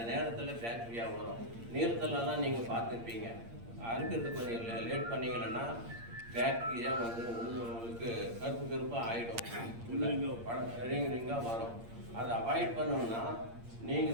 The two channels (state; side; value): late; left; 8.7 ms